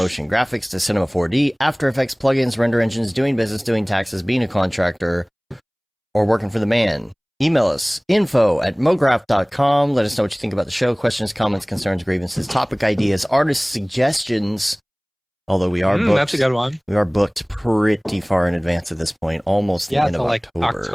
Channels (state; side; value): identical; both; correlation 1.00